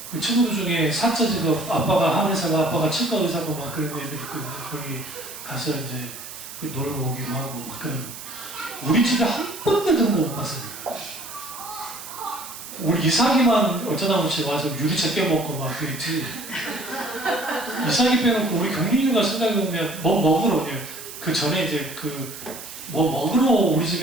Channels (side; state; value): right; noise; hiss, 12 dB below the sound